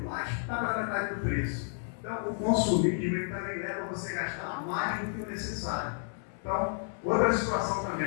mais, está pela metade do preço. Então, o consumismo também leva você a gastar mais do que o necessário. Então, outra situação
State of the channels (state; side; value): silent; right; 57 dB below the other